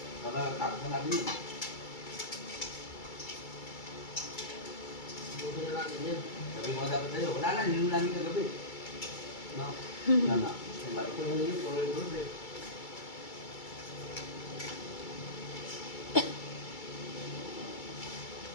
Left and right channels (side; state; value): right; late; 2.3 ms